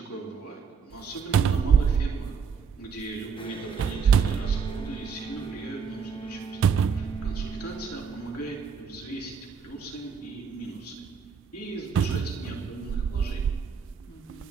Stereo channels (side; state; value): left; quieter; 6.2 dB